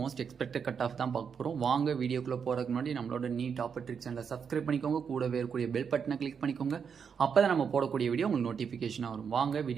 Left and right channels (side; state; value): left; quieter; 6.7 dB